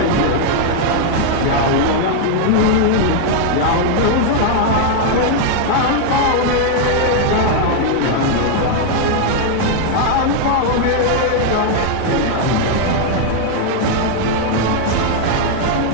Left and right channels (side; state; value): both; different; correlation 0.00